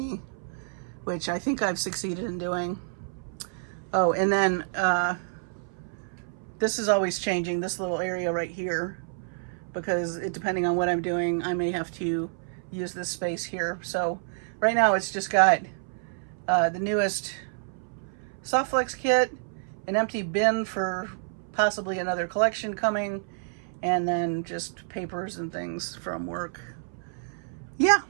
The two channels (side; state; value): left; silent; 59 dB below the other